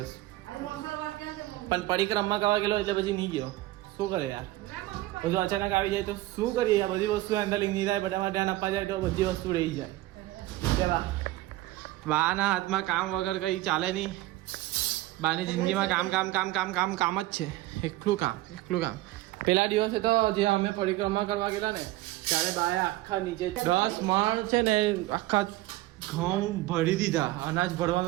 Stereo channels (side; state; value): left; quieter; 17.3 dB